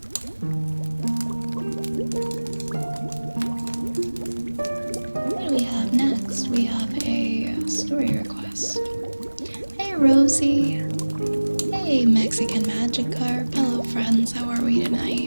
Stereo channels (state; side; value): inverted; both; correlation -1.00